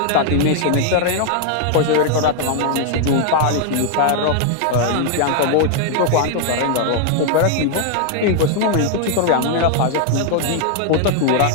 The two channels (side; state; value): both; different; correlation 0.00